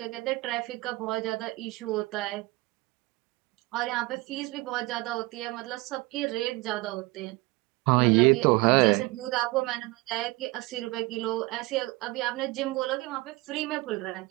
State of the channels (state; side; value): quieter; left; 22.2 dB